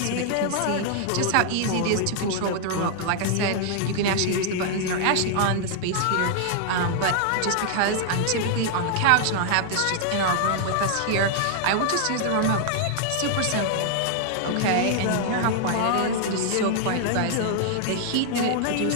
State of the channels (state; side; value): different; both; correlation 0.00